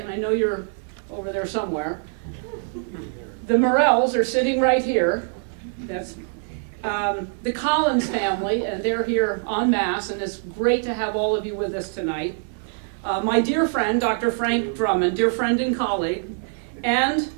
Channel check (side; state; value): left; silent; digital silence